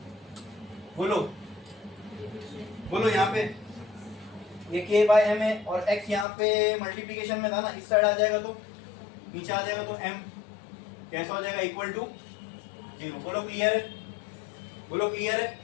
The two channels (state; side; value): drops out; right; at 6.2 s